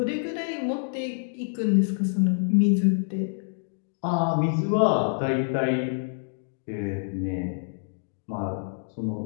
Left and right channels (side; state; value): right; silent; digital silence